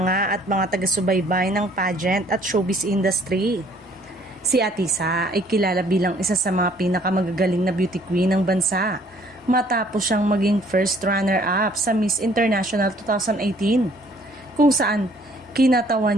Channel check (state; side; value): normal; both; correlation 0.60